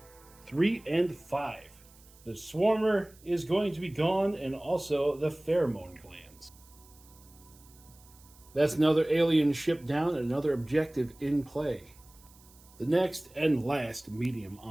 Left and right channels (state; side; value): noise; right; hiss, 26 dB below the sound